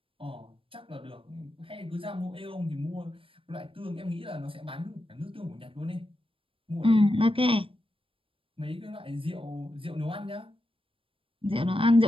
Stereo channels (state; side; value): late; left; 0.26 ms